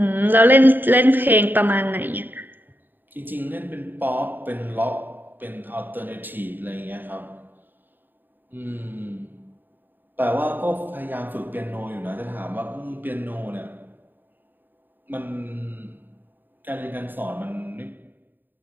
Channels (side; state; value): left; late; 0.092 ms